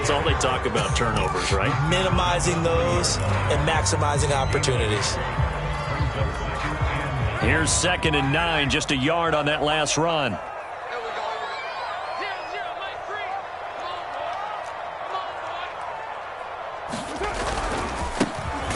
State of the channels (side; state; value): both; identical; correlation 1.00